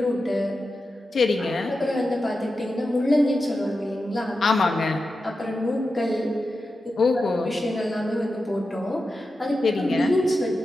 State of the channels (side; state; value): both; normal; correlation 0.91